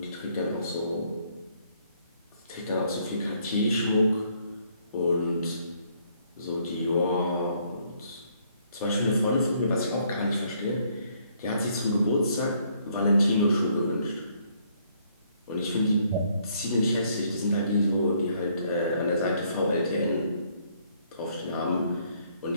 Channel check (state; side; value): inverted; both; correlation -0.68